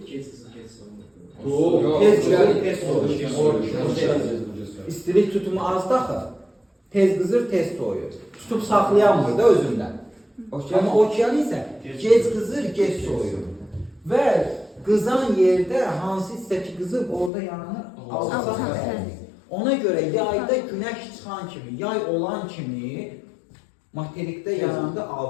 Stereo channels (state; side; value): drops out; right; at 17.3 s